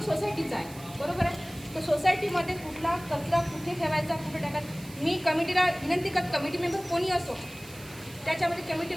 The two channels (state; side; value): noise; right; hiss, 19 dB below the sound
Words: सोसायटीचा आहे बरोबर आहे तर सोसायटीमध्ये कुठला कचरा कुठे ठेवायचा कुठे टाकायचा मी कमिटीला विनंती करत कमिटी मेंबर कोणी असो त्याच्यामध्ये